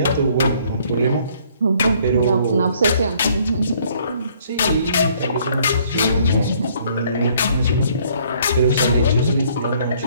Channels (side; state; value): both; inverted; correlation -0.62